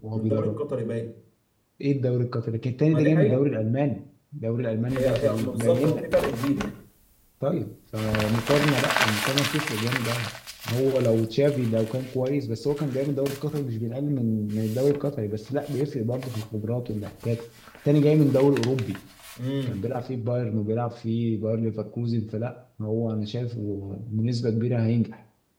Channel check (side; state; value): both; identical; correlation 1.00